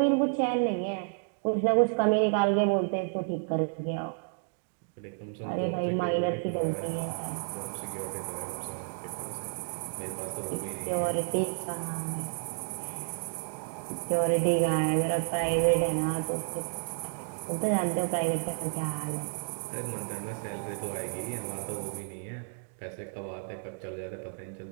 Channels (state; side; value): silent; left; digital silence